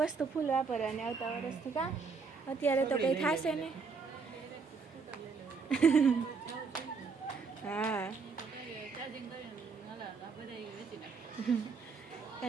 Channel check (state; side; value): quieter; left; 4.9 dB